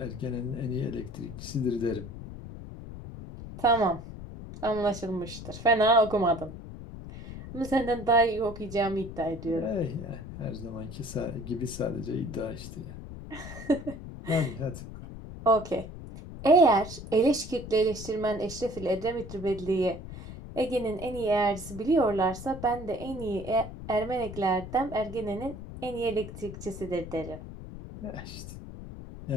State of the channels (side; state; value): left; noise; rumble, 11 dB below the sound